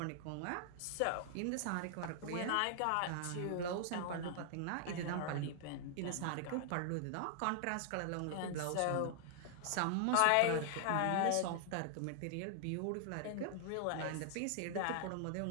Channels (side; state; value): both; different; correlation 0.00